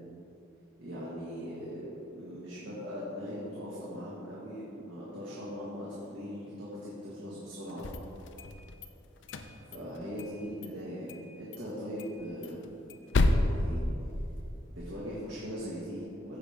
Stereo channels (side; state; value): both; normal; correlation 0.76